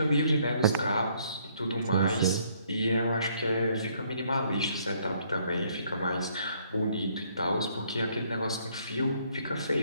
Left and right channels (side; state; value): both; inverted; correlation -0.66